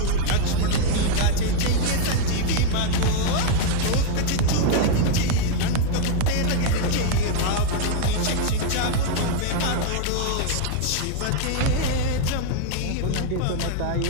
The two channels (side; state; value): both; different; correlation 0.00